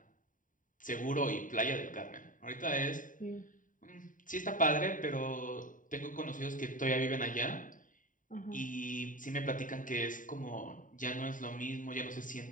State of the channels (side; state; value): right; late; 0.38 ms